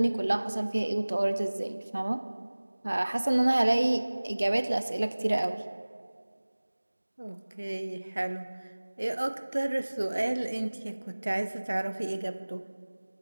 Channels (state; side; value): inverted; both; correlation -1.00